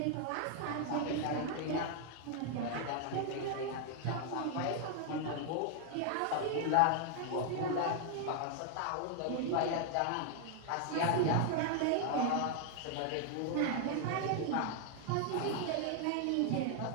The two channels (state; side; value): different; both; correlation 0.00